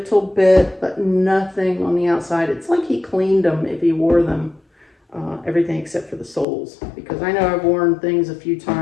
bit, but nothing on the outside. It's like he cleaned them if he wore them. Everything except for the soles, because I know I've worn things a few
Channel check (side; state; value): right; drops out; at 6.5 s